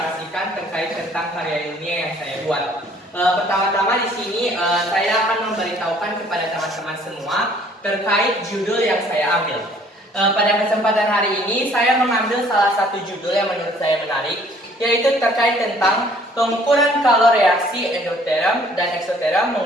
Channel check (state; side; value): normal; both; correlation 0.58